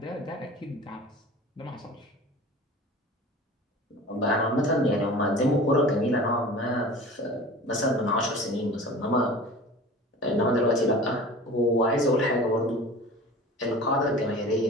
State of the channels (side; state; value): both; normal; correlation 0.38